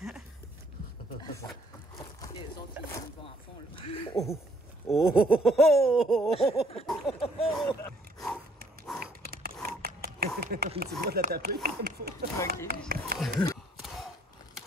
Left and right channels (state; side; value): normal; both; correlation 0.63